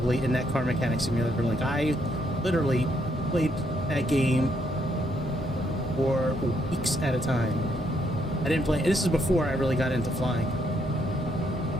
in that Car Mechanic Simulator. Like I literally played that game for weeks at a time. I didn't play. This is before I really got into flying.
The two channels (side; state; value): both; normal; correlation 0.74